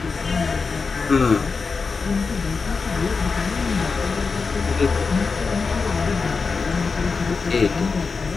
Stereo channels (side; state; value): right; quieter; 4.7 dB